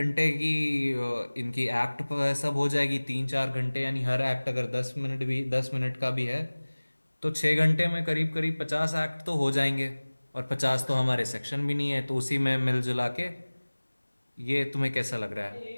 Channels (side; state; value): both; inverted; correlation -1.00